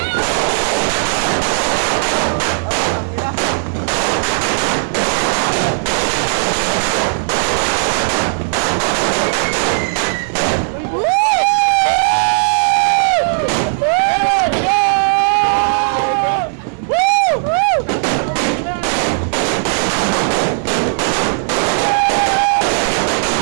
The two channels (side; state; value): left; silent; digital silence